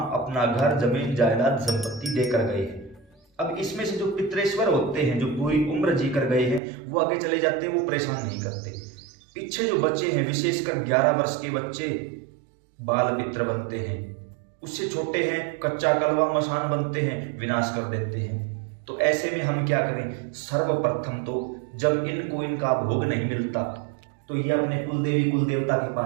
अपना घर, जमीन जायदाद, संपत्ति देकर गए हैं। अब इसमें से जो पितरेश्वर होते हैं, जो पूरी उम्र जी कर गए हैं, वो आगे चले जाते हैं, वो परेशान नहीं करते। पीछे जो बच्चे हैं, विशेषकर 11 वर्ष के बच्चे बाल पित्र बनते हैं। उससे छोटे हैं कच्चा कलवा मसान बनते हैं, विनाश कर देते हैं। तो ऐसे में हम क्या करें? सर्वप्रथम तो जब इनको इनका भोग नहीं मिलता तो ये अपने कुलदेवी कुल देवता के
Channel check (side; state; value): left; drops out; at 6.6 s